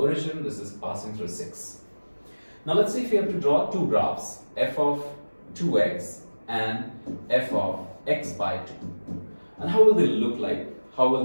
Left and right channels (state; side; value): inverted; both; correlation -1.00